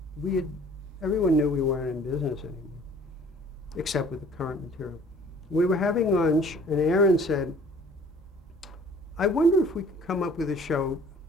Everyone knew we weren't in business anymore, except with the current material. We were having lunch, and Aaron said, I wonder if we could come up with a show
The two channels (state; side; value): normal; both; correlation 0.52